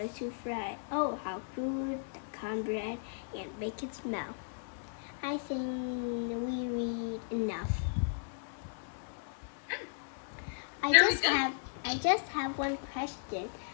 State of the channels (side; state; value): right; silent; digital silence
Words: Oh, how good the cornbread and bacon smell. I think we read enough. I just have one question.